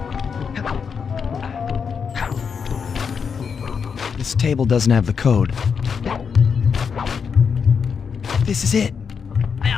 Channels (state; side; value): quieter; right; 6.3 dB